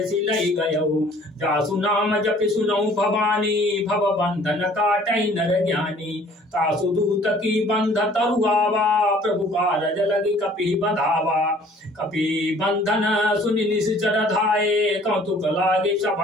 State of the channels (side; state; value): both; normal; correlation 0.54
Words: सिलई गयउ जासु नाम जपि सुनऊ भवानी भव बंधन काटई नर ज्ञानी तासु दूत की बंध तरुआवा प्रभु कारज लगी कपि बधावा कपि बंधन सुनि निश्चर धाये कौतुक लागे